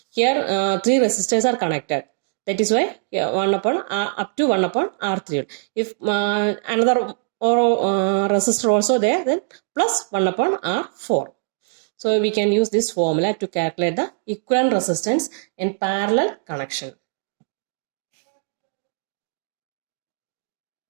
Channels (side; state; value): left; silent; digital silence